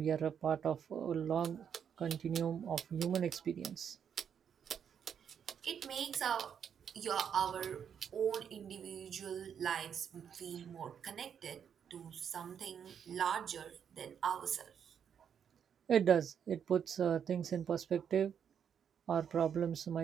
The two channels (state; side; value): quieter; left; 8.0 dB